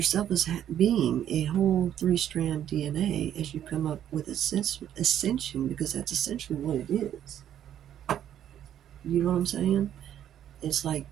as being a whole three-strand DNA, as you come up with ascension, because that's essentially what it is. You know what I'm saying? It's like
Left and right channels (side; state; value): left; quieter; 10.6 dB